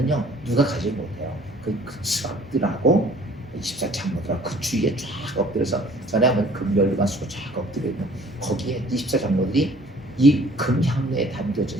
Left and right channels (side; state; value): both; normal; correlation 0.53